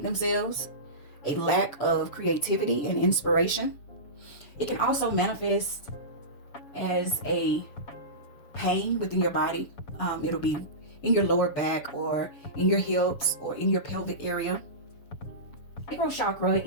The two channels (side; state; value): right; late; 7.1 ms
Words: themselves, a lack of creativity and inspiration. It can also manifest as a pain within your body. It'll be in your lower back or in your hips or in your pelvic area. Sacral chakra